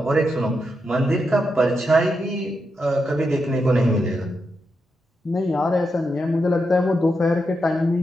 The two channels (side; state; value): both; normal; correlation 0.85